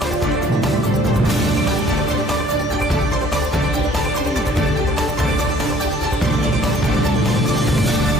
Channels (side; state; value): both; normal; correlation 0.57